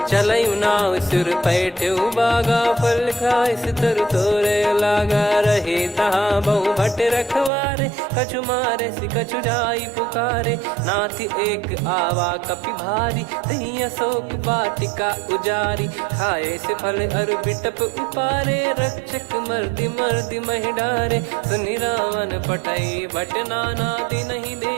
चलऊ नाव सुर पैठऊ बागा, फल खाइस तरु तोरे लागा। रहे तहाँ बहु भट रखवारे, कछु मारे सि कछु जाई पुकारे। नाथ एक आवा कपि भारी, तही अशोक वाटिका उजारी। खाए से फल अरु बिटप उपारे, रक्षक मर्दि मर्दि महि डारे। सुनि रावण पटई भट नाना, नहीं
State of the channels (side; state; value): left; drops out; at 7.5 s